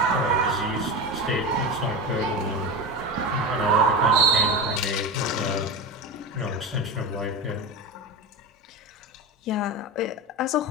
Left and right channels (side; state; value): both; normal; correlation 0.23